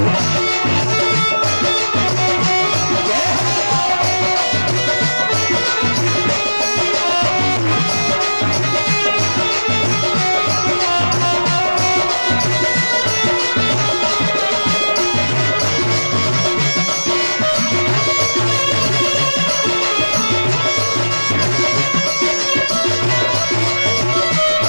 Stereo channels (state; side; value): inverted; both; correlation -1.00